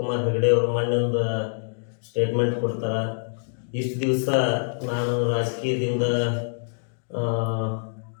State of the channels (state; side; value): silent; right; digital silence